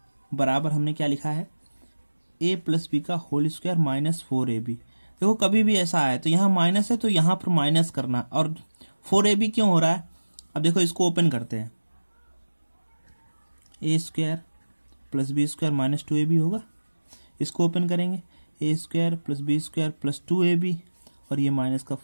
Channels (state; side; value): inverted; both; correlation -1.00